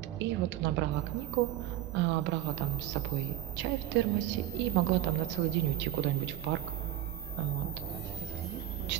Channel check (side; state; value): left; quieter; 13.2 dB